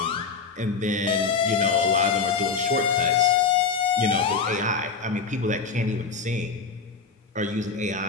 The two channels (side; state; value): right; quieter; 5.2 dB